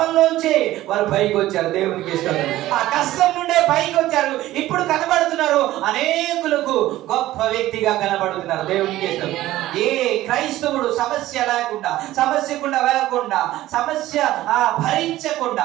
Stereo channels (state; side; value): quieter; left; 15.4 dB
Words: వారు పైకి వచ్చారు. దేవునికి ఇష్టం. ఆ కష్టం నుండే పైకి వచ్చారు. ఇప్పుడు కనబడుతున్నారు, అనేకులకు గొప్ప వ్యక్తిగా కనబడుతున్నారు. దేవునికి ఇష్టం. ఏ క్రైస్తవుడు సమస్య లేకుండా, సమస్యకుండా వెళ్ళకుండా, సమస్య భరించకుండా,